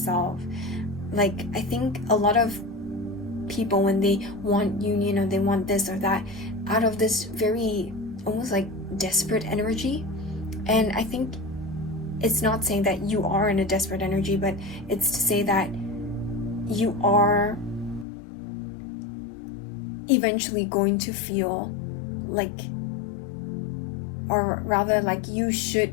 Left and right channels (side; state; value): right; drops out; at 18.1 s